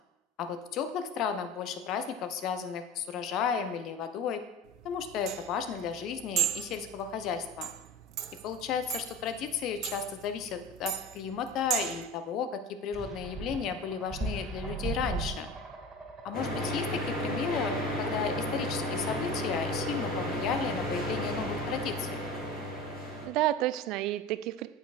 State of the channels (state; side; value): normal; both; correlation 0.33